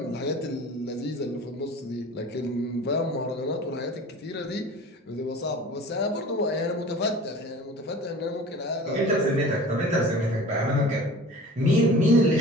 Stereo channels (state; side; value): normal; both; correlation 0.41